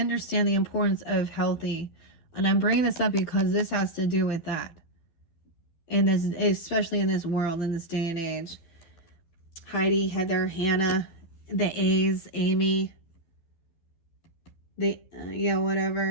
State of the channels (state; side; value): late; right; 12 ms